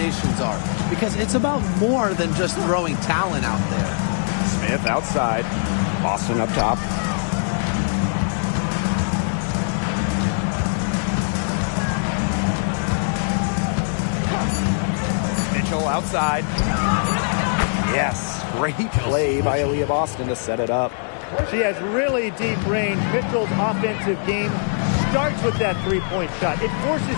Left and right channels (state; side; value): silent; right; digital silence